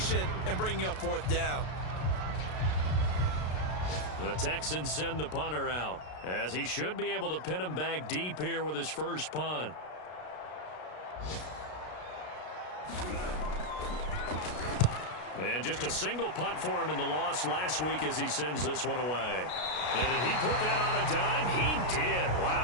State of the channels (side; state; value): right; late; 33 ms